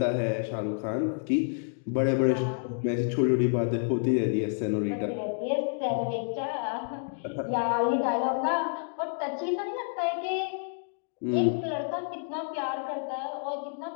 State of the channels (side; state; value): right; silent; digital silence